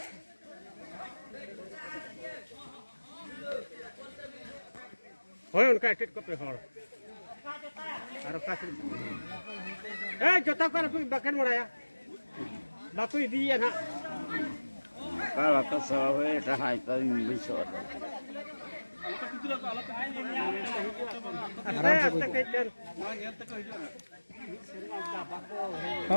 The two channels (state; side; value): inverted; both; correlation -1.00